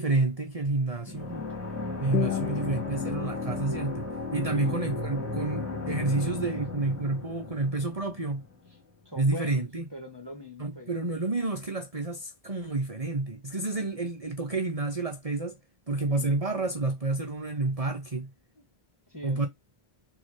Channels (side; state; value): left; late; 1.7 ms